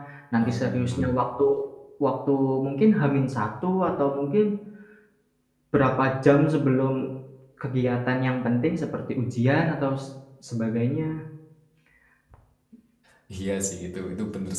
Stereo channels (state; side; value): identical; both; correlation 1.00